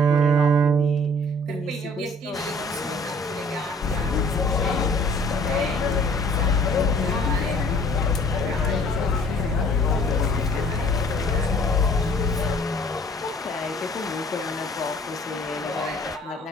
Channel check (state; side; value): normal; both; correlation 0.55